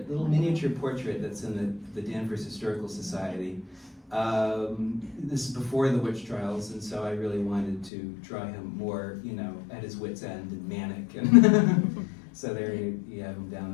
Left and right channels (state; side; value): drops out; right; at 7.9 s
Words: little miniature portrait that's in the Danvers Historical Society. This is before the witch trials, and so I really wanted to draw him more, you know, at his wit's end and manic. And so there you have him down